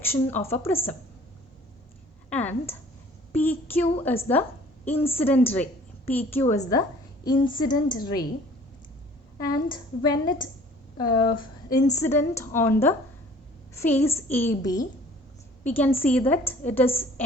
of a prism and PQ is the incident ray. PQ is the incident ray, and when it incident on the face AB, we can see that it is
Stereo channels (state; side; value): normal; both; correlation 0.52